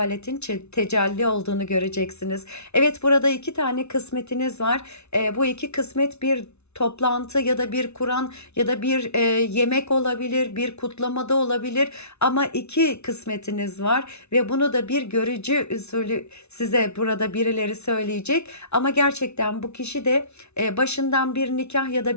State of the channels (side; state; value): right; late; 0.81 ms